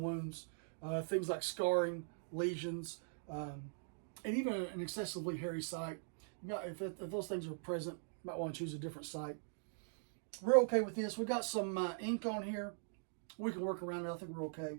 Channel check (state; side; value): silent; left; digital silence